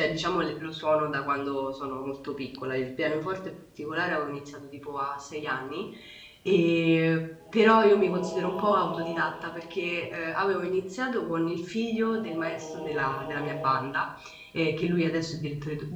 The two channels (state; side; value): identical; both; correlation 1.00